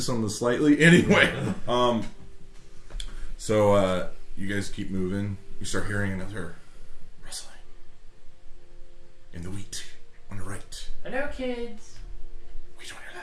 on the slightly. Anyway, so you guys keep moving. You start hearing another rustling in the wheat on the right. Hello, kids. We don't hear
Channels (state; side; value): identical; both; correlation 1.00